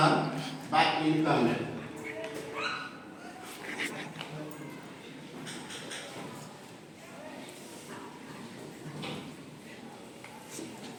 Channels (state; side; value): identical; both; correlation 1.00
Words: by income method.